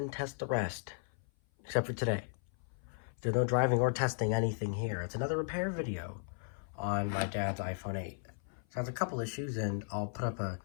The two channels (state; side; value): silent; right; 54 dB below the other